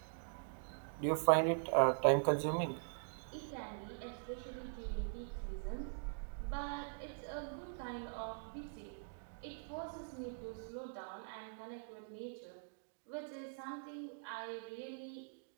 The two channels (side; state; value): left; silent; digital silence